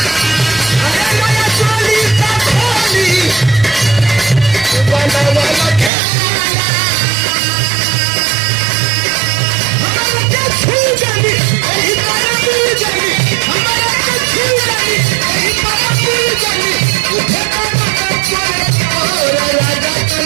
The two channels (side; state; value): left; drops out; at 5.9 s